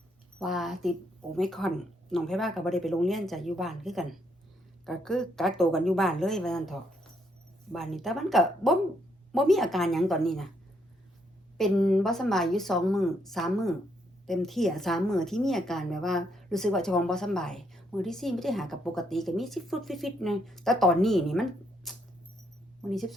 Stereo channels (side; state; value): both; normal; correlation 0.74